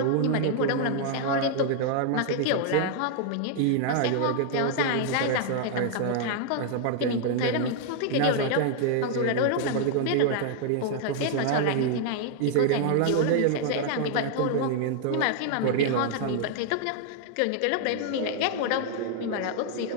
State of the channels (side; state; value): both; different; correlation 0.00